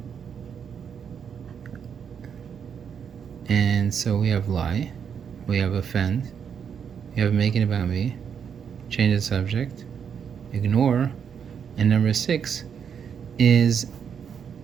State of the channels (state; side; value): quieter; left; 7.4 dB